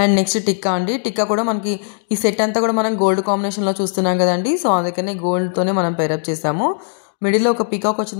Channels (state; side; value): silent; right; digital silence